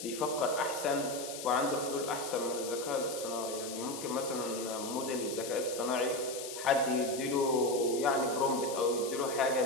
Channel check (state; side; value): noise; left; hiss, 9 dB below the sound